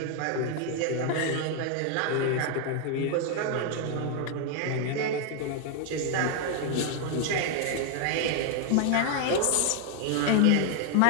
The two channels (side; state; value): both; different; correlation 0.00